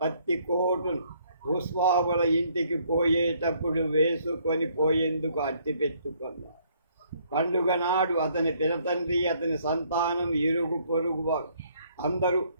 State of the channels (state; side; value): inverted; both; correlation -0.66